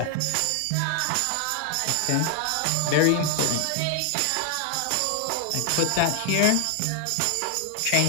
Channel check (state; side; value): different; both; correlation 0.00